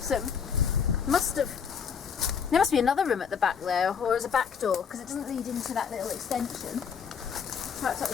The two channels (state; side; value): quieter; right; 6.8 dB